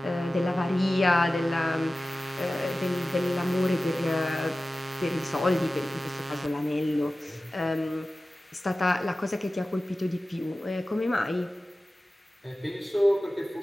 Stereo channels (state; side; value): normal; both; correlation 0.96